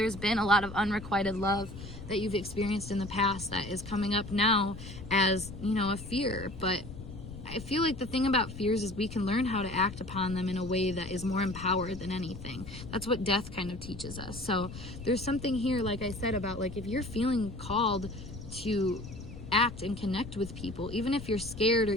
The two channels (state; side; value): noise; left; rumble, 12 dB below the sound